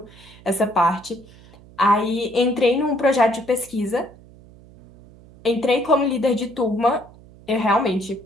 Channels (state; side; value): noise; right; hum, 23 dB below the sound